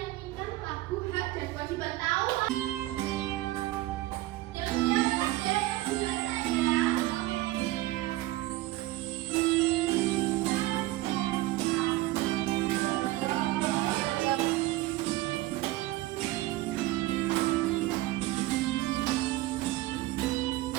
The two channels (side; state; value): left; quieter; 17.5 dB